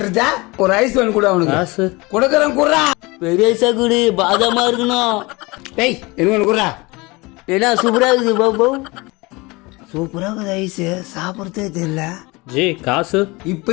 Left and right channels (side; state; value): right; quieter; 24.2 dB